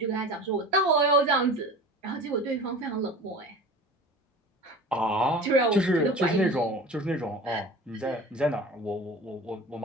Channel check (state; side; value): normal; both; correlation 0.37